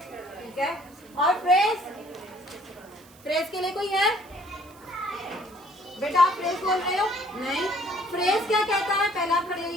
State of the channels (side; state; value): right; noise; hiss, 25 dB below the sound